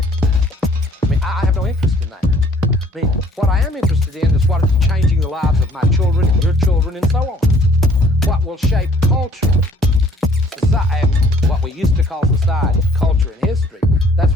I mean, I have no interest in that. I mean, what I am interested in is what is changing the lives of my children and your children and so on. What will shape culture, society, what we used to call society, culture, and history. That's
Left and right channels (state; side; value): normal; both; correlation 0.59